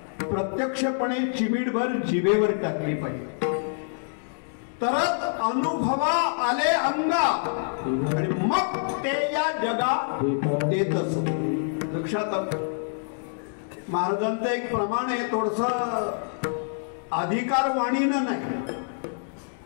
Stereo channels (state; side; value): silent; right; digital silence